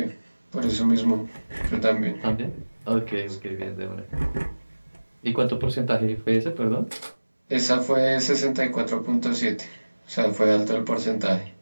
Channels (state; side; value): inverted; both; correlation -1.00